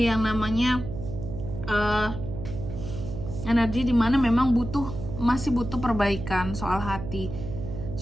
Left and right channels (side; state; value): right; noise; hum, 7 dB below the sound